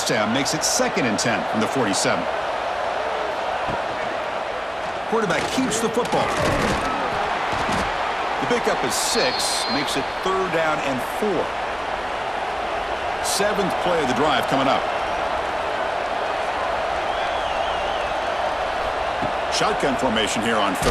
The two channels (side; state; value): both; identical; correlation 1.00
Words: down makes it 2nd and 10 from the 47. Quarterback keeps the football. The pickup is 6, makes it 3rd down and 4. 7th play of the drive coming up. Shotgun formation here on